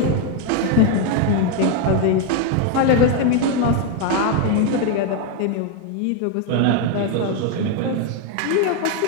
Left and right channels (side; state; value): both; different; correlation 0.01